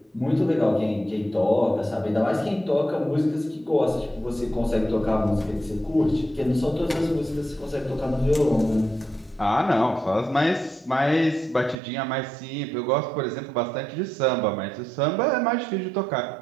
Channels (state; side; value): drops out; left; at 11.8 s